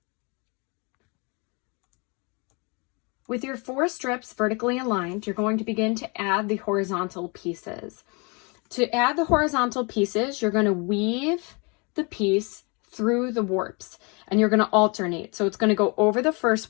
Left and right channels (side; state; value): right; quieter; 31.0 dB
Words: With your 4 strips vertically aligned, you're going to begin to add the horizontal pieces. To add the horizontal pieces, you're going to weave the piece through the warps, and you're going to alternate. So it's going to go over the first